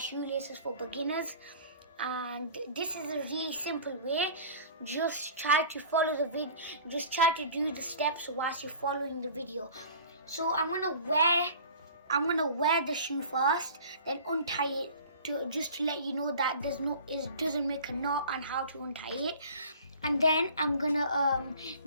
for beginners. And this is a really simple way. Just try to follow the video, just try to do the steps whilst you're following the video. So I'm going to wear the shoe first, then untie it. Just to let you know that it doesn't make a knot and how to untie it, and then I'm gonna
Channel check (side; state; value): both; inverted; correlation -0.44